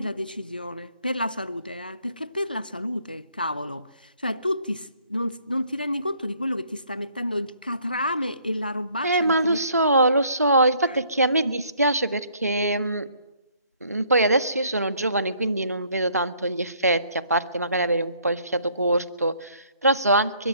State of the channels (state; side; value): inverted; both; correlation -0.63